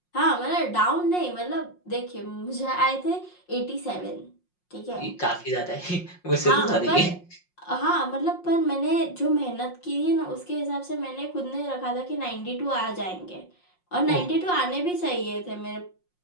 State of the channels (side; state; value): right; late; 5.6 ms